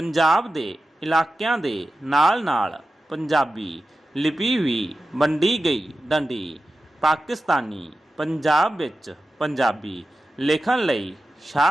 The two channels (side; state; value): both; normal; correlation 0.93